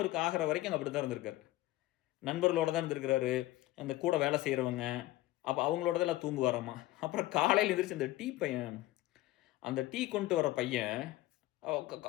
ஆகிற வரைக்கும் அங்கே அப்படி தான் இருந்திருக்காரு. நண்பர்களோட தான் இருந்திருக்கிறாரு, அந்த கூட வேலை செய்கிறவங்க, அப்போ அவங்களோட தான் எல்லாம் தூங்குவாராம்மா. அப்புறம் காலையில் எந்திரிச்சு அந்த டீ கொண்டு வர பையன்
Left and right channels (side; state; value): right; quieter; 16.8 dB